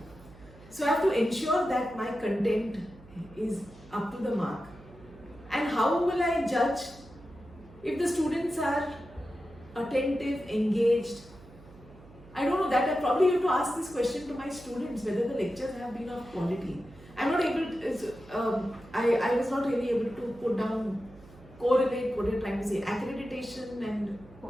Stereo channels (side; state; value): right; noise; hum, 22 dB below the sound